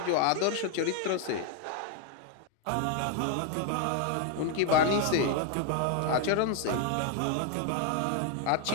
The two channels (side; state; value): both; different; correlation 0.01